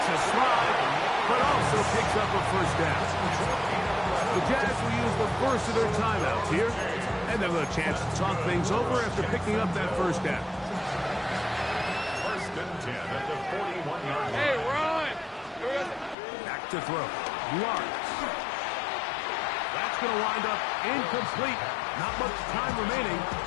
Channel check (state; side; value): drops out; right; at 16.2 s